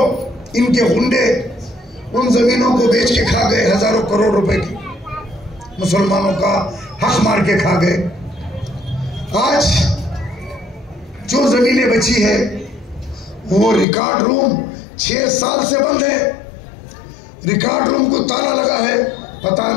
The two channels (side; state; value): right; drops out; at 13.9 s